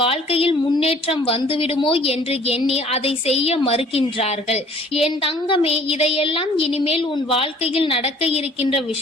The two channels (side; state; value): both; normal; correlation 0.53